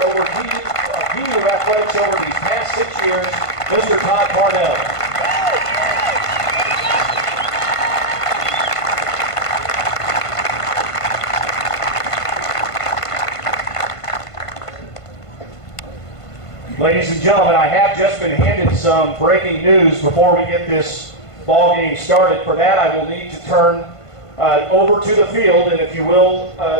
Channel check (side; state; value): right; late; 1.5 ms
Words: over BU athletics over these past 6 years, Mr. Todd Parnell. Ladies and gentlemen, I have just been handed some breaking news before we get this ball game started. For that, I will need to turn over to the field, and if you will,